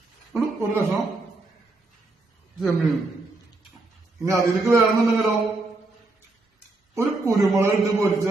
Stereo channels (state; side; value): quieter; left; 3.2 dB